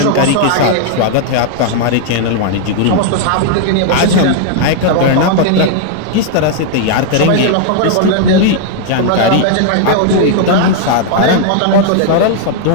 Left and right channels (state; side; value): different; both; correlation 0.00